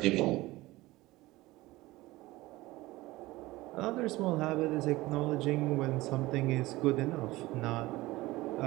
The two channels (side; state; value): left; quieter; 19.2 dB